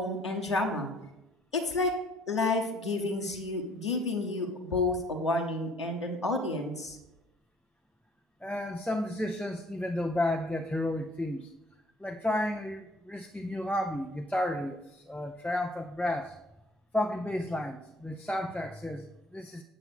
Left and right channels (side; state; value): both; normal; correlation 0.58